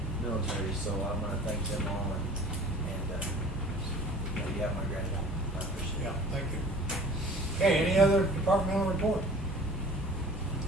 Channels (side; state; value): both; normal; correlation 0.45